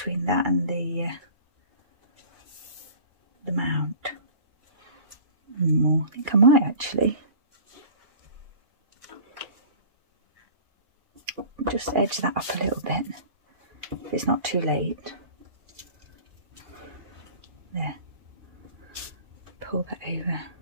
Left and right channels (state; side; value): late; left; 2.4 ms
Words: that and the mount? I think I might actually. Just edge that up a little bit if it's not too late. There. Pull that over.